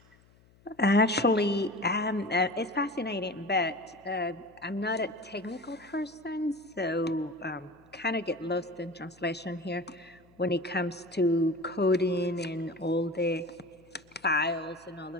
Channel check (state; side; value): noise; left; hum, 29 dB below the sound